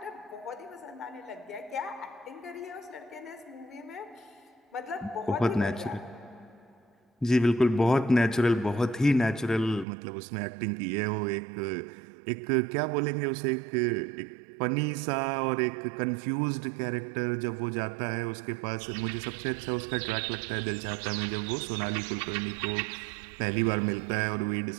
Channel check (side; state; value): left; drops out; at 9.9 s